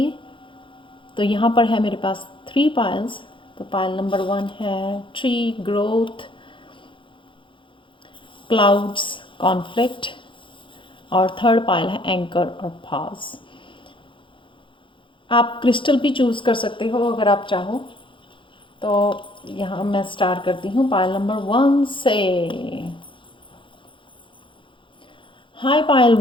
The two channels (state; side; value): late; right; 0.24 ms